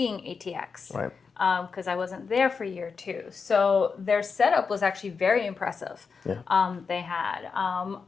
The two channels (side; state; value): right; quieter; 5.3 dB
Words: ATX. Right. Because I wasn't there for year 2. So their setup was actually very impressive. Yeah. They had